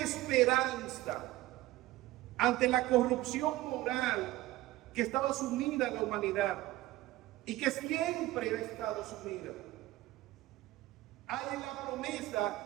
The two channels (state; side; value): quieter; left; 17.2 dB